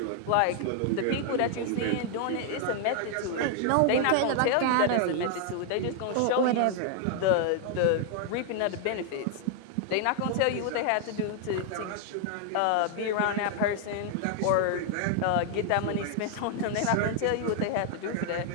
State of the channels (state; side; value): different; both; correlation 0.00